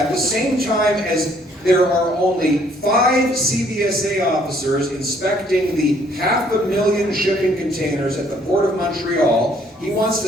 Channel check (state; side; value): normal; both; correlation 0.64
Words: the same time as there are only 5 CBSA officers inspecting the 500,000 shipping containers at the Port of Montreal, he wants